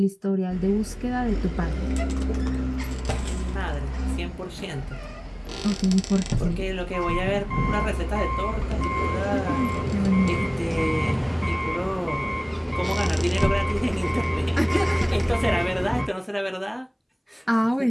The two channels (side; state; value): both; identical; correlation 1.00